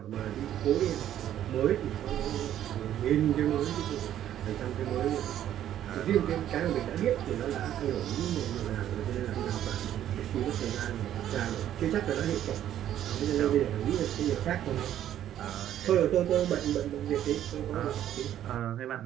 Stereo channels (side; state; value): left; quieter; 11.3 dB